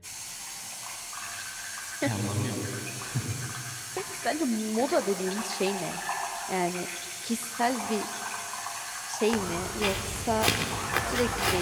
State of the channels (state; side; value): identical; both; correlation 1.00